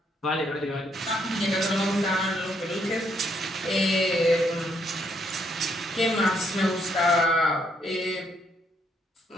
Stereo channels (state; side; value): normal; both; correlation 0.73